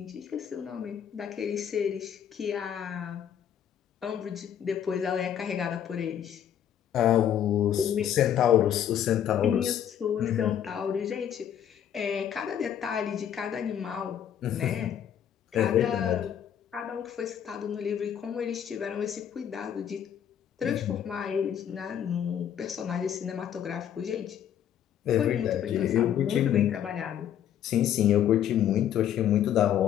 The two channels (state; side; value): quieter; right; 9.7 dB